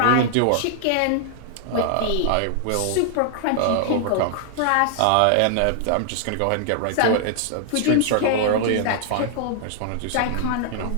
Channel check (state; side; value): different; both; correlation -0.01